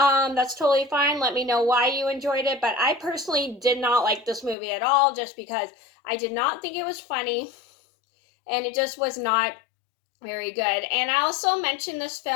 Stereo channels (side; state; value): right; drops out; at 4.5 s